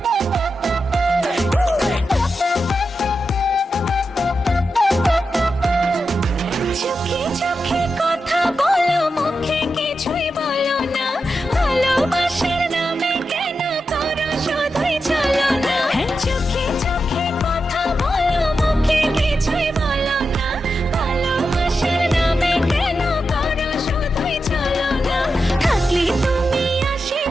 চোখে চোখে কথা বলো মুখে কিছুই বলো না ভালোবাসার নামে কেন করো শুধুই চলো না চোখে চোখে কথা বলো মুখে কিছুই বলো না ভালোবাসার নামে কেন করো শুধুই চলো না থাকলে তুমি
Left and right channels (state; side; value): normal; both; correlation 0.88